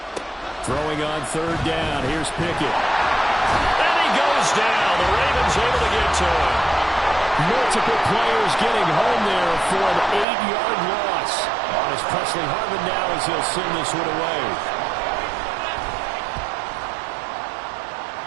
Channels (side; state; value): left; drops out; at 10.2 s